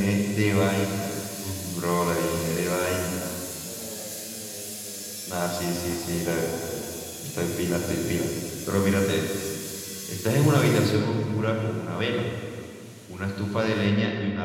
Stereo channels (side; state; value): both; identical; correlation 1.00